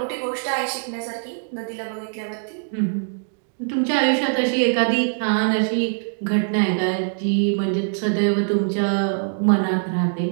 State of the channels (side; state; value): left; silent; digital silence